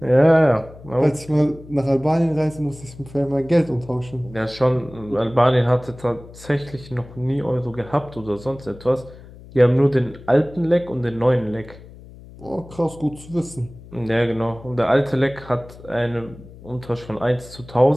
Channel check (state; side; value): noise; left; hum, 19 dB below the sound